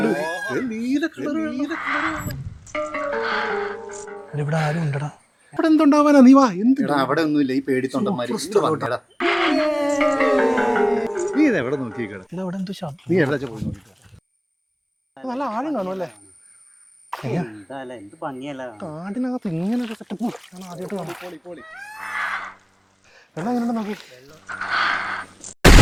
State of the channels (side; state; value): both; identical; correlation 1.00